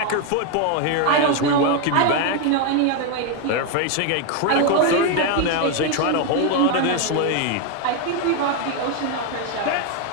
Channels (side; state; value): both; different; correlation 0.01